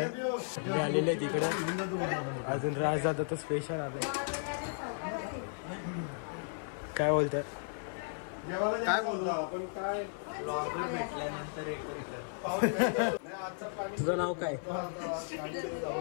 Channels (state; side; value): silent; right; 55 dB below the other